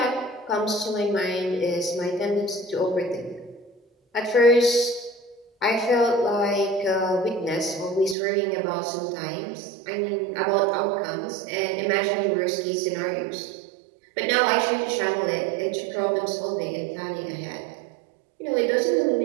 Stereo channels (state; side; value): drops out; left; at 8.2 s